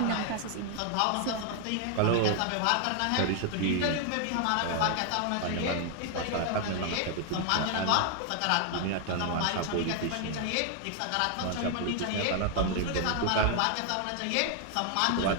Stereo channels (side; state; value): both; different; correlation 0.00